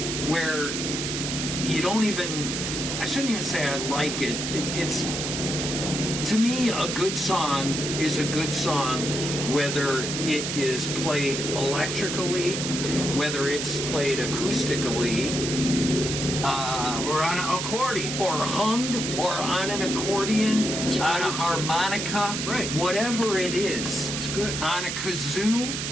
where you don't even, I shouldn't even say I like it. It's, to me, a good song is a good song, whether it is played electrically, whether it's played acoustically, or on an accordion. or hummed, or on an accordion, on a harmonica, right? Whatever it is, it's good. On a kazoo,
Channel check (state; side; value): noise; right; hiss, 3 dB below the sound